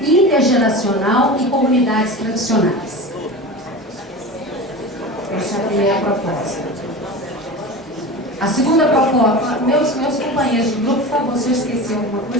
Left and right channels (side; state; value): both; normal; correlation 0.30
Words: intergeracional e comunidades tradicionais. Essa é a primeira proposta. A segunda proposta, meus companheiros de grupo, por favor, se eu esqueci alguma